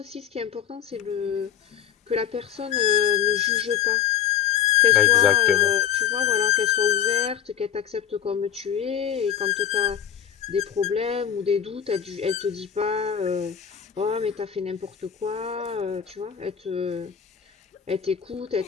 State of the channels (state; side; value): quieter; right; 9.1 dB